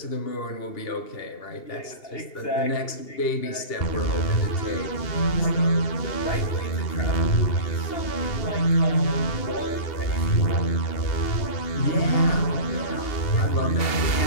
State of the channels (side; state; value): right; late; 2.8 ms